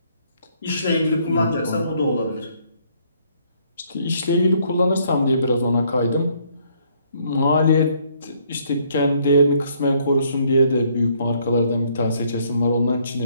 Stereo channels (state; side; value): inverted; both; correlation -0.67